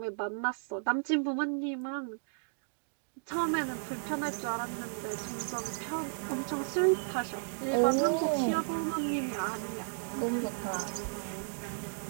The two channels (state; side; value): silent; left; digital silence